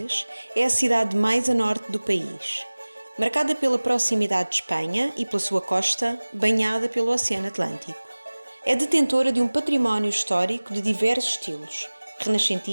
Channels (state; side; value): inverted; both; correlation -1.00